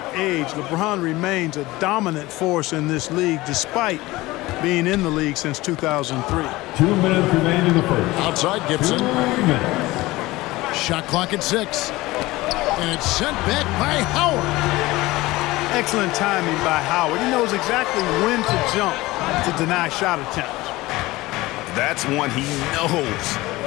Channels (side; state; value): right; quieter; 19.5 dB